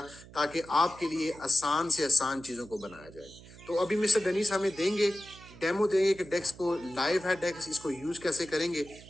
ताकि आपके लिए आसान से आसान चीज़ों को बनाया जाए। तो अभी मिस्टर डेनिस हमें देंगे, डेमो देंगे कि डेक्स को लाइव है, डेक्स इसको यूज कैसे करेंगे।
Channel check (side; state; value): right; noise; hum, 19 dB below the sound